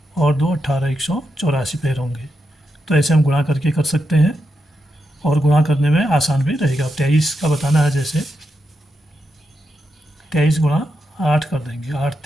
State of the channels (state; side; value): normal; both; correlation 0.85